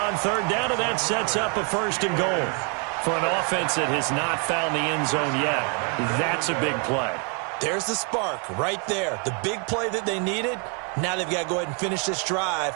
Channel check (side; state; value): left; quieter; 37.9 dB